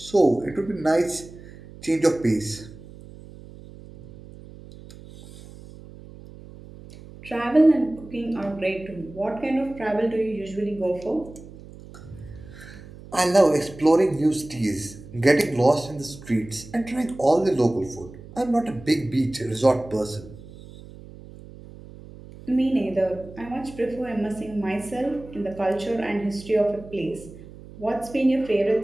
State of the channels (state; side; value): noise; right; hum, 18 dB below the sound